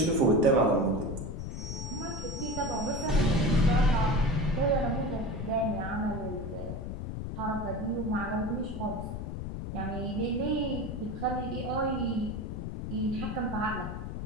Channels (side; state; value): left; noise; rumble, 6 dB below the sound